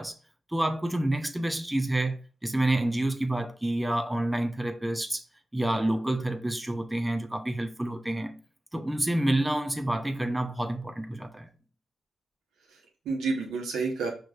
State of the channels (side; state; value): both; normal; correlation 0.96